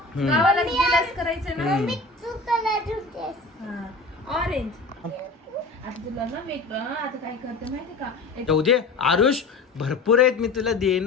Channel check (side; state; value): right; quieter; 3.5 dB